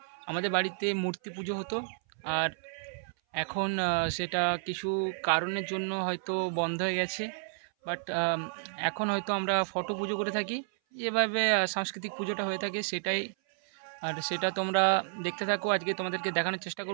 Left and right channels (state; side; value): silent; left; 57 dB below the other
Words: আমাদের বাড়িতে মূর্তি পুজো হতো, আর এখন সেটা কিছু কারণের জন্য হয়তো বন্ধ হয়ে গেছে। বাট এখন হয়তো আমরা ফটো পুজো করে থাকি, যেভাবে সাংস্কৃতিক পুজোটা হয়ে থাকে সেটাই। আর সেটা তোমরা দেখতে থাকো। আজকে তোমাদেরকে দেখানোর চেষ্টা